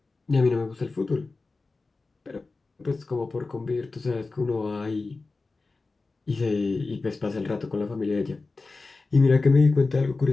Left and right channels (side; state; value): right; quieter; 3.7 dB